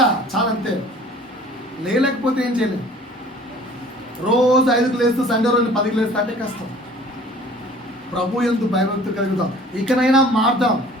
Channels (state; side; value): normal; both; correlation 0.49